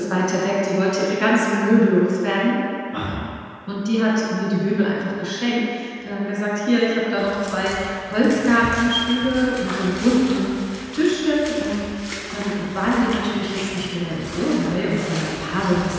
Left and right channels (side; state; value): both; identical; correlation 1.00